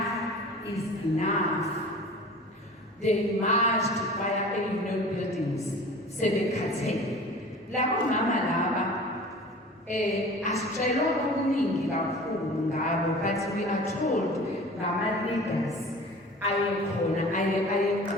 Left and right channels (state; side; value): normal; both; correlation 0.41